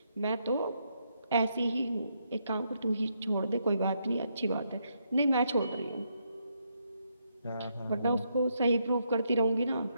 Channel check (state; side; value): inverted; both; correlation -0.78